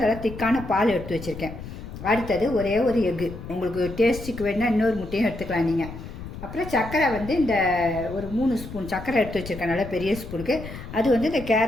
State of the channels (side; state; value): left; noise; rumble, 11 dB below the sound